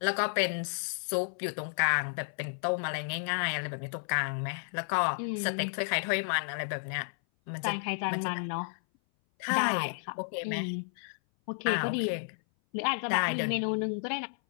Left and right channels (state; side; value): silent; right; 57 dB below the other